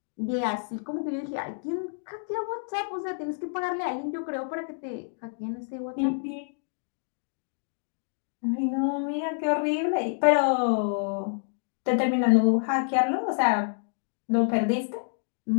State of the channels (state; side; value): silent; right; digital silence